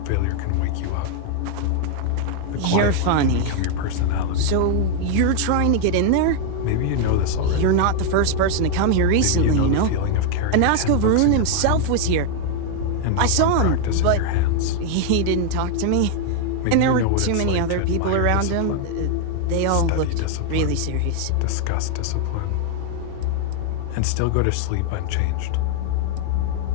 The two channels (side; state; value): both; different; correlation 0.00